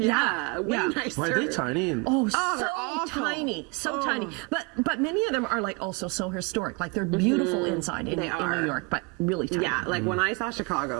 nicer. Why are they tiny? And Oh, they're so awful. tiny, so tiny. But many of them are like also so historic. Like they're beautiful inside in They are. New York, but really tiny. Yeah, like when I saw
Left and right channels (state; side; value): quieter; left; 30.1 dB